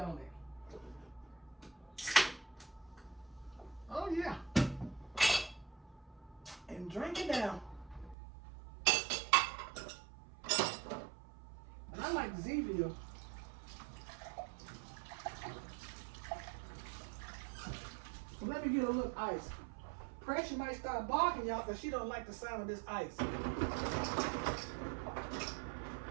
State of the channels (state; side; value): drops out; left; at 8.2 s